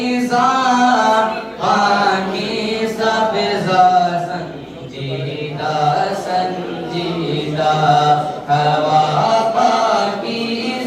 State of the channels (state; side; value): identical; both; correlation 1.00